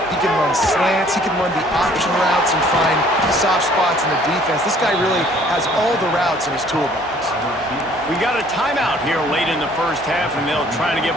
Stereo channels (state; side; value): normal; both; correlation 0.58